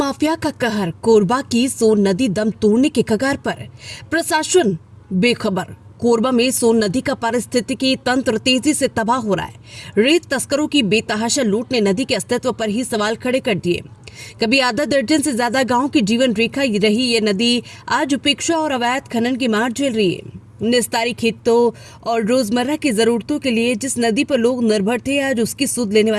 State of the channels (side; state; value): both; identical; correlation 1.00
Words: का कहर, कोरबा की सोन नदी दम तोड़ने के कगार पर, प्रशासन बेखबर। कोरबा में सोन नदी का पारिस्थितिकी तंत्र तेजी से तबाह हो रहा है। रेत तस्करों की बेतहाशा लूट ने नदी के अस्तित्व पर ही सवाल खड़े कर दिए। कभी आधा दर्जन से ज्यादा गांव की जीवन रेखा रही ये नदी आज उपेक्षा और अवैध खनन की मार झेल रही है। निस्तारी खेतों और रोजमर्रा की जरूरतों के लिए जिस नदी पर लोग निर्भर थे, आज उसकी सुध लेने